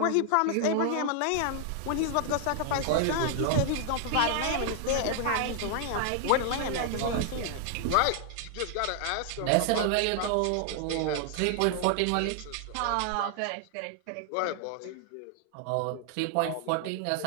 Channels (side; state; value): both; different; correlation 0.00